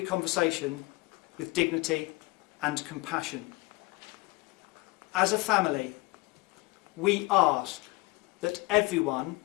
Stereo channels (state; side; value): quieter; right; 23.5 dB